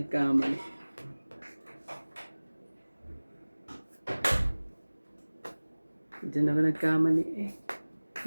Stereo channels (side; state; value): both; inverted; correlation -1.00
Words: Diyan ako nagkamali eh.